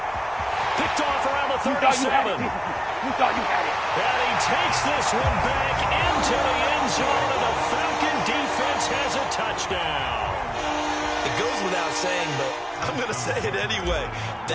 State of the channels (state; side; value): identical; both; correlation 1.00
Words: Picked off around the 37. You thought you had it. And he takes this one back into the end zone, and the Falcon defense has a touchdown. It goes without saying, but I'm going to say it anyway.